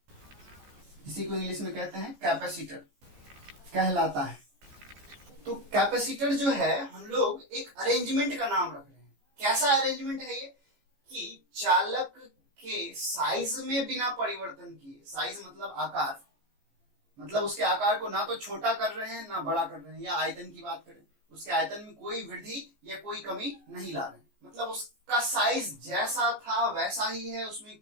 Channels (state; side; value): late; left; 14 ms